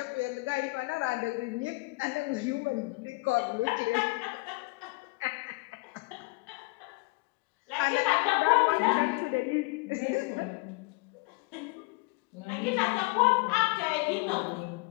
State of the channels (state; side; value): quieter; right; 26.4 dB